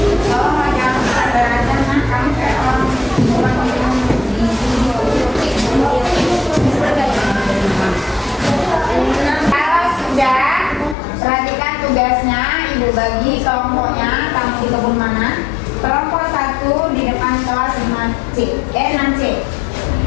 Tugasnya ibu bagi kelompoknya, kamu di kebun mana? Kelompok 1 di depan kelas 6C.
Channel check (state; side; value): drops out; right; at 11.0 s